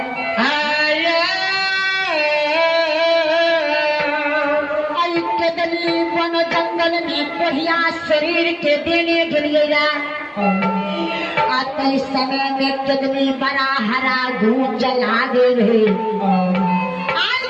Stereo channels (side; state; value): both; identical; correlation 1.00